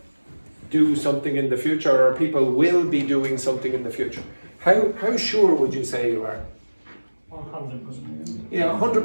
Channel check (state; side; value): inverted; both; correlation -1.00